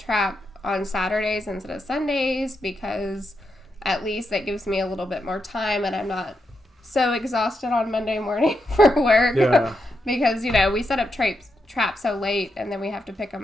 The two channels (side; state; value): both; normal; correlation 0.84